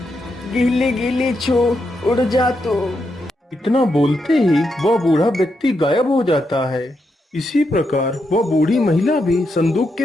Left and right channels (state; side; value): normal; both; correlation 0.83